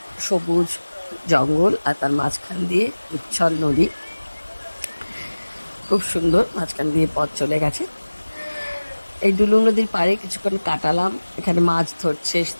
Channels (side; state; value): both; inverted; correlation -1.00